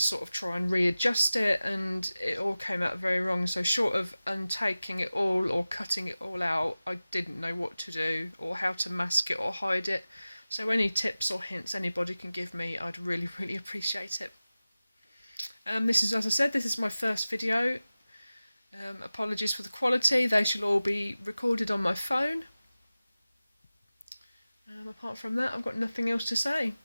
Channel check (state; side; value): inverted; both; correlation -0.96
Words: of try and readjust it, and it all came out very wrong. So short of untaking it all or cutting it all out, I didn't know what to do or how to mask it or hide it. So any tips or hints anybody can give me, I'd really appreciate it. This is, as I said, this is my first video. Apologies for the quality. They shall all be recorded on my phone. Apart from that, I've got nothing else to say,